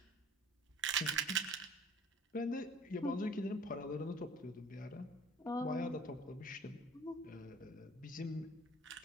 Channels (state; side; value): normal; both; correlation 0.49